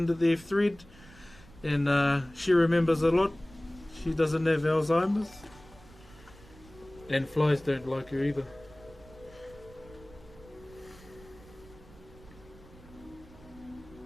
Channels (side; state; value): right; noise; rumble, 22 dB below the sound